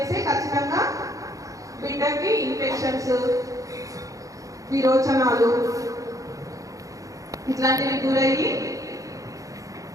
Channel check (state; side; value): late; left; 0.16 ms